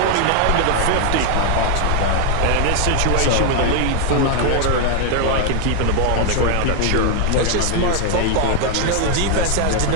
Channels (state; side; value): different; both; correlation 0.00